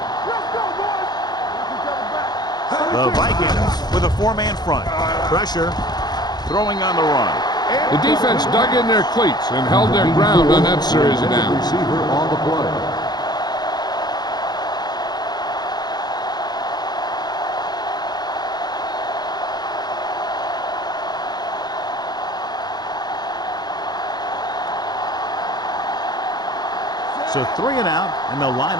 The Vikings with a 4-man front. Pressure. Throwing on the run. The defense dug in their cleats and held their ground on that series of downs. Receiver on the play. So 3 and out, and they'll line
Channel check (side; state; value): right; late; 0.20 ms